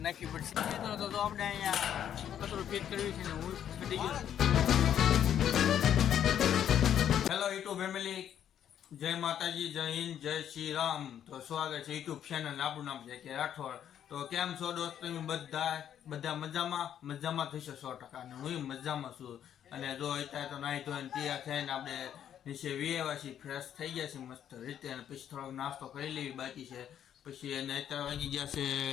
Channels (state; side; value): quieter; right; 9.8 dB